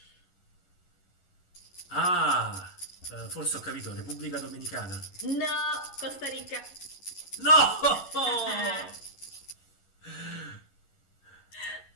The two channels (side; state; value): right; late; 11 ms